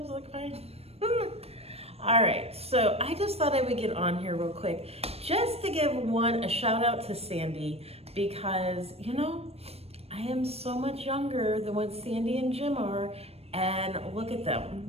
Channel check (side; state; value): left; late; 0.29 ms